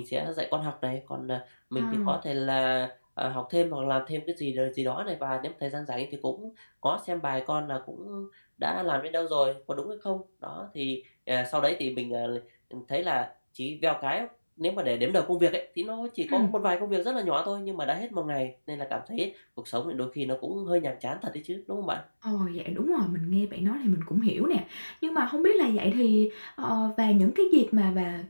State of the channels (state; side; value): inverted; both; correlation -1.00